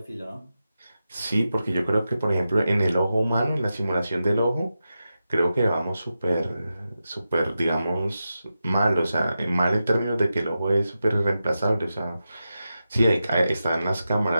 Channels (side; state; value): both; inverted; correlation -0.90